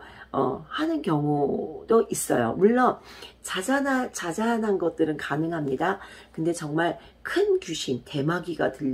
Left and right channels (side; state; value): both; identical; correlation 1.00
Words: 하는 경우도 있어요. 물론 자잘한 것들은 가능합니다. 근데 정말 큰 귀신, 대마귀가